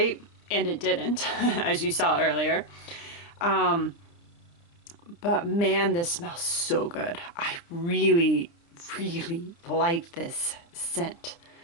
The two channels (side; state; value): right; late; 29 ms